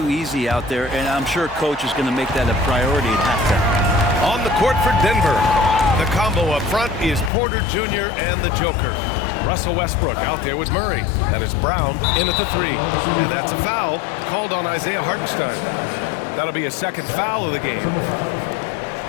easy out there, and I'm sure Coach is going to make that a priority at halftime. On the court for Denver, the combo up front is Porter Jr. and the Joker. Russell Westbrook out there with Murray. That is Brown in at the 3. And that's a foul called on Isaiah Hartenstein. That'll be a second foul of the game.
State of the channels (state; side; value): drops out; right; at 7.3 s